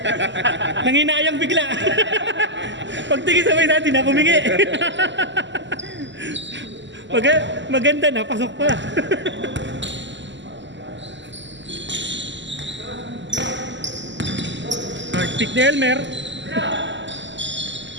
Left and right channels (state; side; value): late; left; 0.54 ms